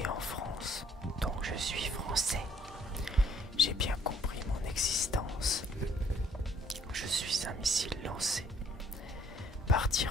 en France, donc je suis français. J'ai bien compris mon existence. Je suis un missile lancé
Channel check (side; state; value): both; normal; correlation 0.62